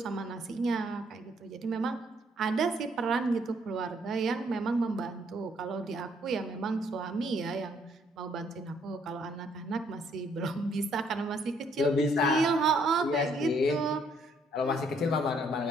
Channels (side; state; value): both; normal; correlation 0.68